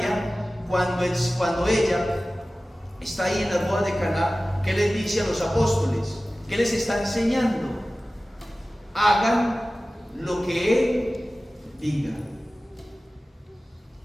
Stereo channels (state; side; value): normal; both; correlation 0.96